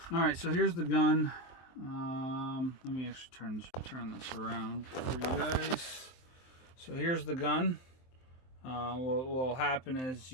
Alright, so here's the gun. Let me actually turn this around for you guys. So here's the gun. What will happen is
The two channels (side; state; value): right; late; 23 ms